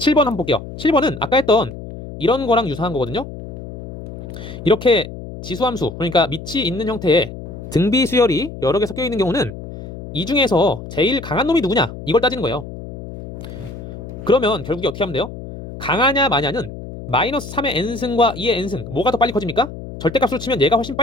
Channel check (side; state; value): left; noise; hum, 12 dB below the sound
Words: 한번 볼게요. 7번은 아까 했던 이런 거랑 유사한 거거든요. 이렇게 지수함수, 그러니까 밑이 있는 형태의 등비 수열이 여러 개 섞여 있는 경우는 이 중에서 제일 강한 놈이 누구냐 이걸 따지는 거예요. 그러면 결국에 어떻게 하면 돼요? 강하냐 마냐는 마이너스 3의 n승과 2의 n승 뭐가 더 빨리 커집니까? 절대값으로 치면 얘가 훨씬